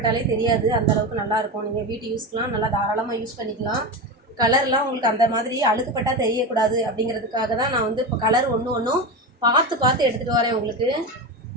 தெரியாது, அந்தளவுக்கு நல்லாயிருக்கும். நீங்கள் வீட்டு யூஸ்க்கெலாம் நல்லா தாராளமாக யூஸ் பண்ணிக்கலாம். கலர்லாம் உங்களுக்கு அந்த மாதிரி அழுக்குப்பட்டால் தெரியக்கூடாது அப்படிங்கிறதுக்காக தான் நான் வந்து இப்போ கலர் ஒன்றும் பார்த்து எடுத்துகிட்டு வரேன் உங்களுக்கு.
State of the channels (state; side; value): normal; both; correlation 0.20